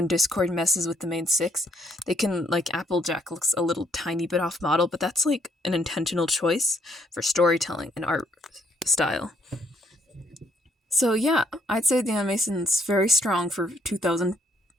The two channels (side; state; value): both; normal; correlation 0.70